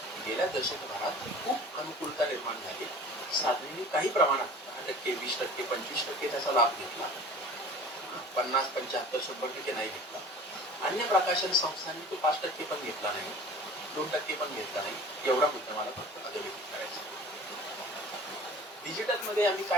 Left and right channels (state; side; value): normal; both; correlation 0.43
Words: गेल्या दशकभरात खूप अनुकूलता निर्माण झाली. साधनेने काही प्रमाणात 10%, 20%, 25% त्याचा लाभ घेतला, 50, 75, 100% नाही घेतला. अन्य प्रकाशन संस्थांनी तो 5% पण घेतला नाही, 2% पण घेतला नाही. एवढा मुद्दा मला फक्त अधोरेखित करायचा. डिजिटल मध्ये आम्ही